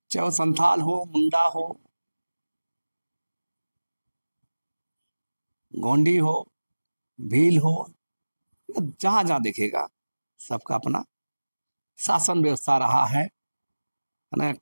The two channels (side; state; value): both; inverted; correlation -1.00